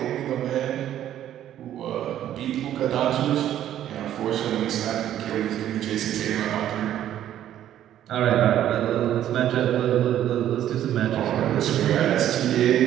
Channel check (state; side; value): quieter; left; 11.5 dB